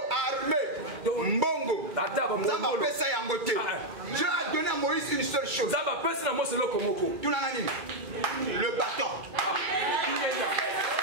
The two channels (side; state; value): left; late; 2.3 ms